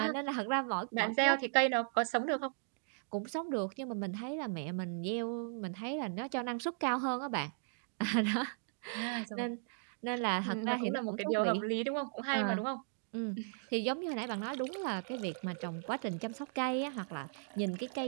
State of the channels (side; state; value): left; silent; digital silence